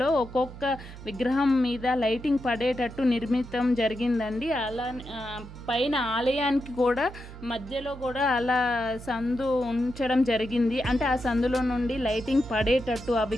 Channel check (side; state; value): right; noise; hum, 15 dB below the sound